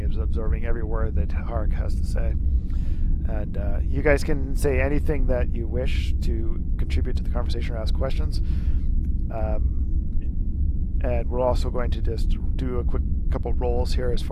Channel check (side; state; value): both; identical; correlation 1.00